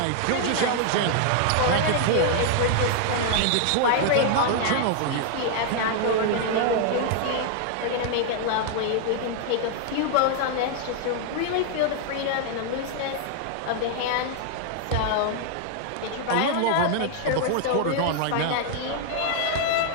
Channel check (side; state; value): both; different; correlation 0.00